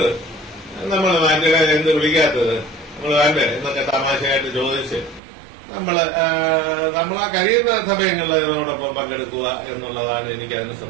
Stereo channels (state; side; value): drops out; left; at 5.2 s